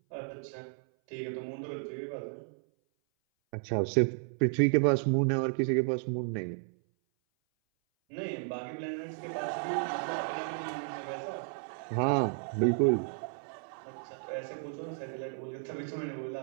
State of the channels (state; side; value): silent; left; 56 dB below the other